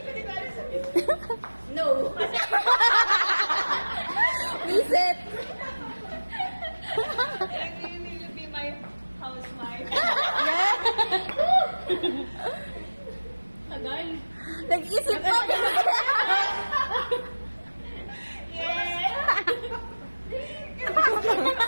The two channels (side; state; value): both; inverted; correlation -1.00